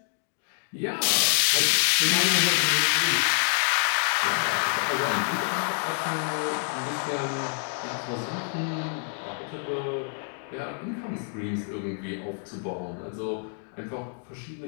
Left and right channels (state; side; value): silent; right; 60 dB below the other